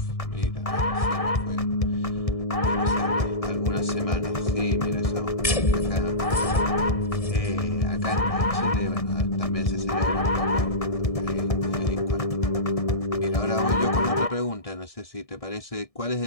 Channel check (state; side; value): late; right; 1.6 ms